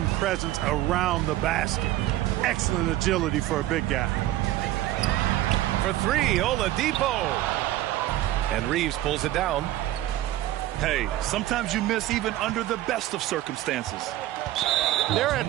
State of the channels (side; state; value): left; quieter; 14.9 dB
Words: presence around the basket. Excellent agility for a big guy. For three, Oladipo. And Reeves pulls it down. Hey, sometimes you miss even under the best of circumstances. They're